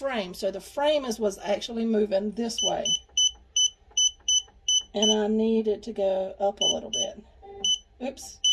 So the frame is what's actually moving this way. And I need it to go up a little bit. Oops,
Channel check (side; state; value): both; identical; correlation 1.00